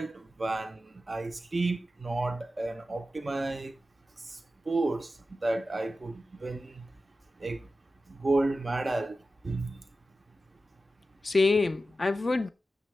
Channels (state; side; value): normal; both; correlation 0.92